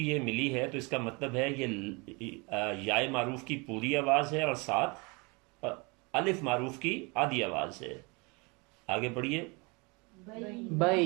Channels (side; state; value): left; quieter; 28.9 dB